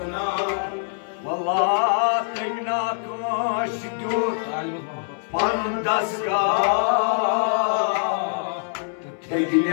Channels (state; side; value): silent; right; 63 dB below the other